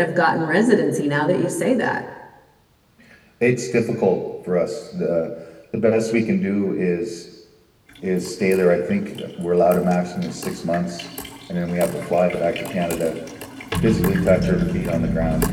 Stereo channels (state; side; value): identical; both; correlation 1.00